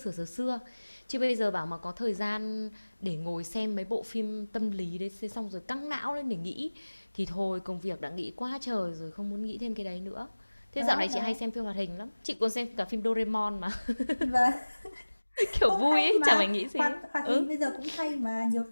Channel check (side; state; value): both; inverted; correlation -1.00